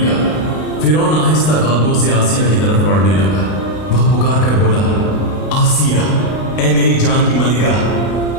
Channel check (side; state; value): right; late; 32 ms